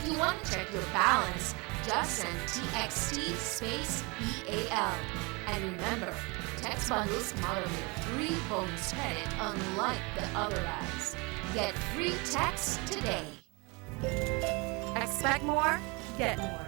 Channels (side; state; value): left; quieter; 28.3 dB